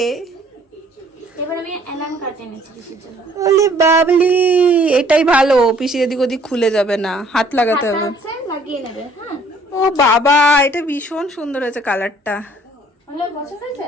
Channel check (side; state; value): both; normal; correlation 0.59